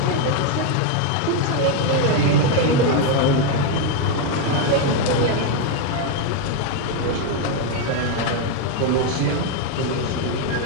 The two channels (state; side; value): different; both; correlation 0.01